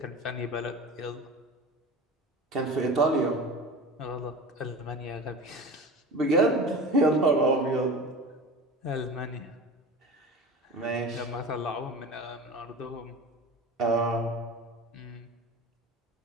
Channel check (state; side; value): normal; both; correlation 0.33